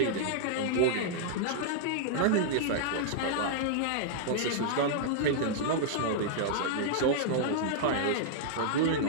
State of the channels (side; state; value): both; different; correlation -0.01